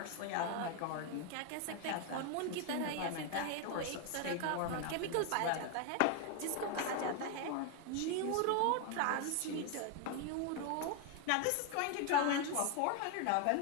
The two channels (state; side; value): different; both; correlation 0.01